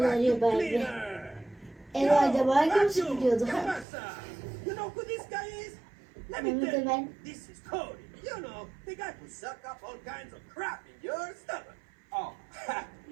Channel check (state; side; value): drops out; left; at 3.9 s